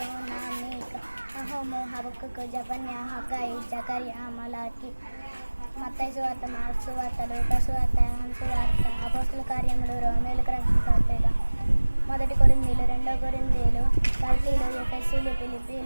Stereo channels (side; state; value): both; inverted; correlation -1.00